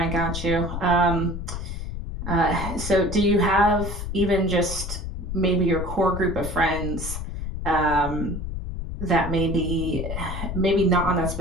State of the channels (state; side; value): noise; left; rumble, 5 dB below the sound